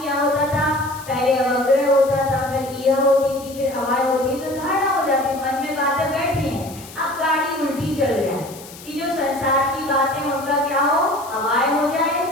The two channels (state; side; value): noise; left; hiss, 17 dB below the sound